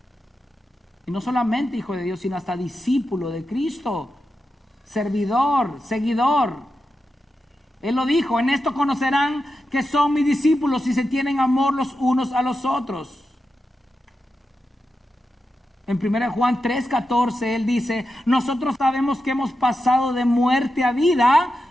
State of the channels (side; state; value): both; normal; correlation 0.89